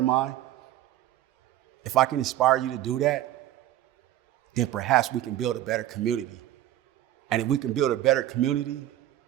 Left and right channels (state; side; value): quieter; left; 13.5 dB